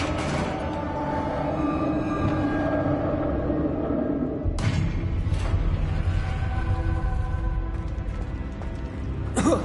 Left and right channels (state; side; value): identical; both; correlation 1.00